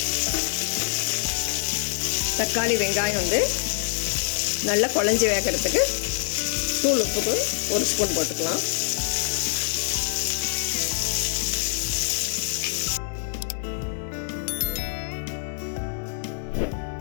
தக்காளி வெங்காயம் நல்லா குழஞ்சி வேகிறதுக்கு தூள் உப்புக்கு 1 ஸ்பூன் போட்டுக்கலாம்.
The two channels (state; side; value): silent; right; 62 dB below the other